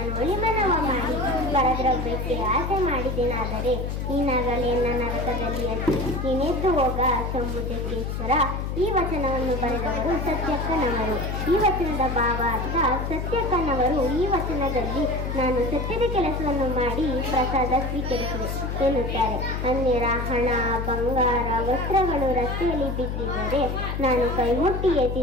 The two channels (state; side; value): noise; left; hum, 3 dB below the sound